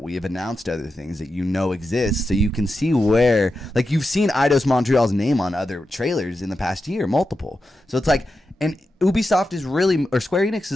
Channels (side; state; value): both; normal; correlation 0.89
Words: We have announced other things that you know exist, so you can see where, like, you've seen Eidos Montreal's name on other trailers in the past year, multiple. So it's like, and Ubisoft is really, or Square Enix